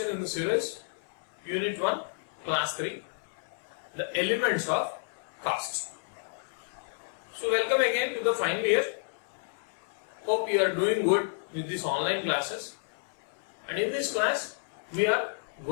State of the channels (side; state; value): right; silent; 57 dB below the other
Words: in the series, Unit 1, Class 3, the elements of cost. So welcome again to the final year. Hope you are doing good with these online classes. And in this class, we are